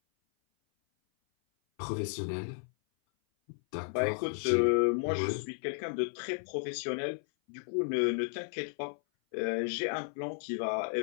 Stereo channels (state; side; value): silent; right; 55 dB below the other